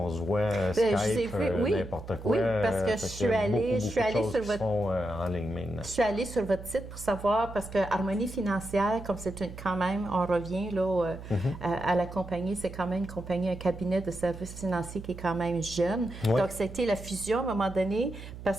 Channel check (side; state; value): right; noise; hum, 12 dB below the sound